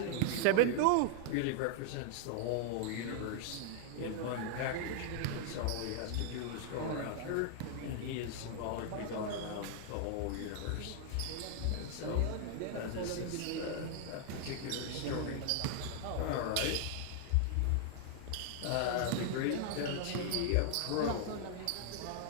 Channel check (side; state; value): both; different; correlation -0.01